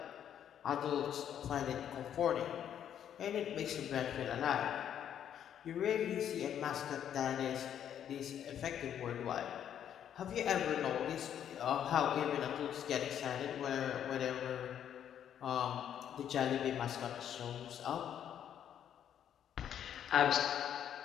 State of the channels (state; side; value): quieter; right; 9.6 dB